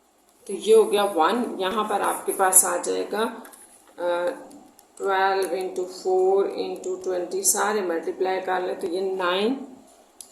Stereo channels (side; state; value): both; identical; correlation 1.00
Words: तो ये हो गया 1। यहाँ पर आपके पास आ जाएगा 12 इंटू 4 इंटू 20, सारे मल्टीप्लाई कर ले तो ये 9